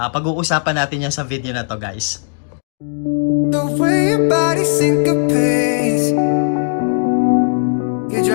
natin yan sa video na to guys. The way your body syncopates, you're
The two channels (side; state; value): right; silent; digital silence